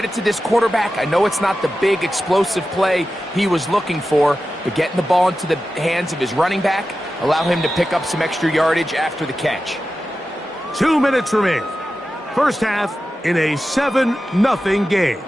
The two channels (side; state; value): both; normal; correlation 0.93